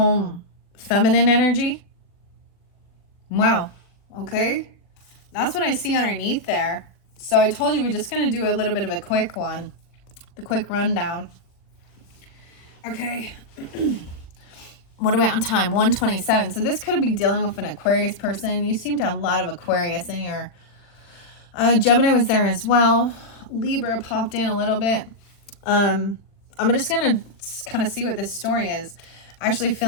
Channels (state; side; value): late; right; 40 ms